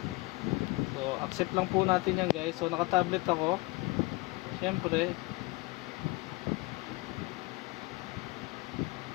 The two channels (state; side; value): quieter; right; 24.2 dB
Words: So accept lang po natin yan guys. So naka-tablet ako. Syempre.